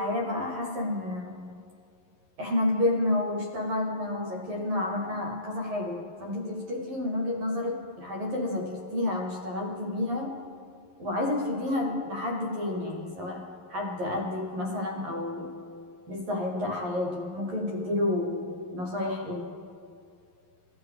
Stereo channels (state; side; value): late; left; 11 ms